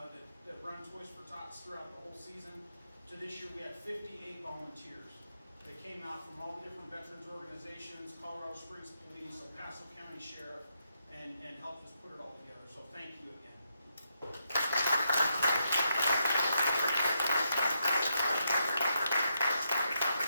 that run Toys for Tots throughout the whole season to this year we have 58 volunteers that came out from all the different veterans organizations, Colorado Springs Police, El Paso County Sheriff, and helped us put it all together. So thank you again.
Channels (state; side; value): inverted; both; correlation -0.82